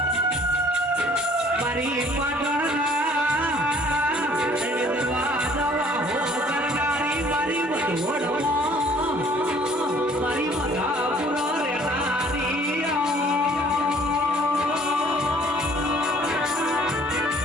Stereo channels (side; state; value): both; normal; correlation 0.56